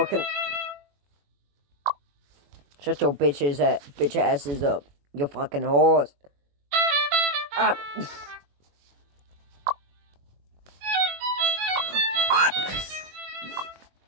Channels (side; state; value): left; late; 21 ms